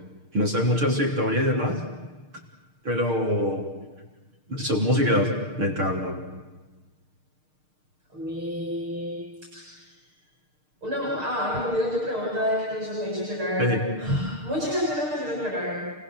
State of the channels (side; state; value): left; late; 6.6 ms